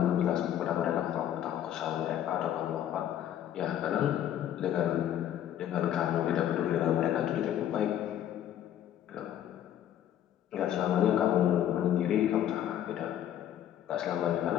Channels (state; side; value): quieter; right; 11.0 dB